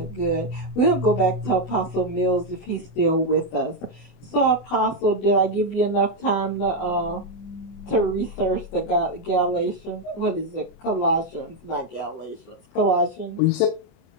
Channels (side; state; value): right; late; 24 ms